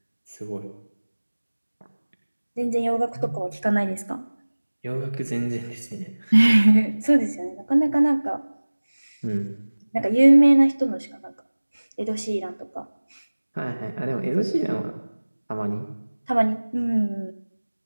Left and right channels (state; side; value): inverted; both; correlation -1.00